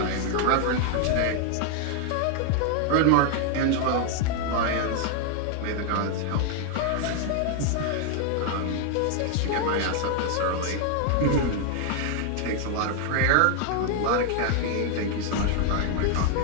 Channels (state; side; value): different; both; correlation 0.00